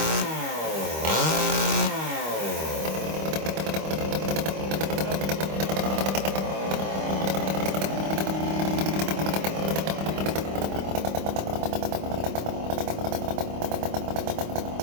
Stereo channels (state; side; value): late; left; 25 ms